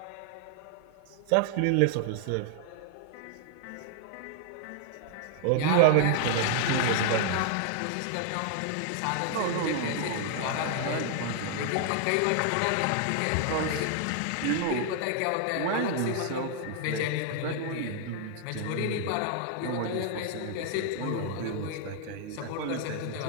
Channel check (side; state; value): both; different; correlation 0.00